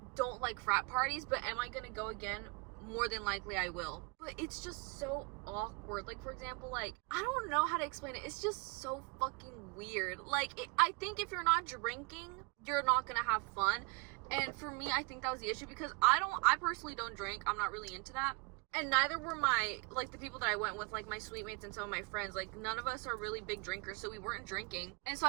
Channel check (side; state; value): left; quieter; 28.2 dB